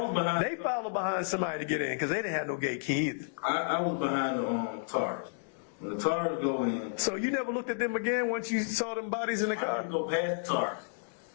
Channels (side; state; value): right; silent; digital silence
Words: was behind. They followed behind somebody to get in because they didn't have no gate key either. I was behind the tourist. When the tourist go in. So you never looked at them again once you saw them bodies in the car? I didn't go past the tourist,